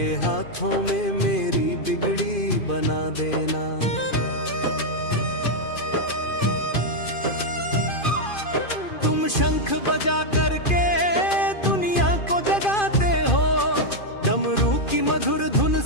हाथों में मेरी बिगड़ी बना देना। तुम शंख बजा करके दुनिया को जगाते हो, डमरू की मधुर धुन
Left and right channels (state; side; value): late; right; 2.5 ms